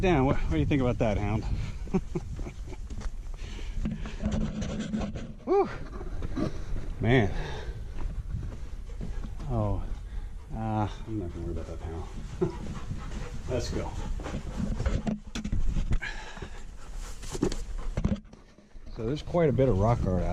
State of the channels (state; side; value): identical; both; correlation 1.00